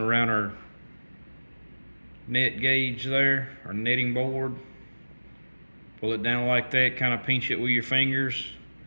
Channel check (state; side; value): inverted; both; correlation -1.00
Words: our net gauge there, our netting board. Pull it down like that, kind of pinch it with your fingers,